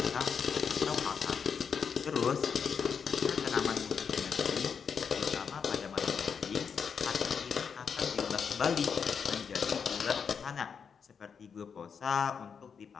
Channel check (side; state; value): right; quieter; 6.5 dB